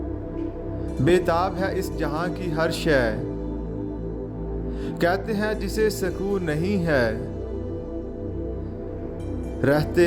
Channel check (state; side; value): identical; both; correlation 1.00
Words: बेताब है इस जहां की हर शय, कहते हैं जिसे सुकून नहीं है। रहते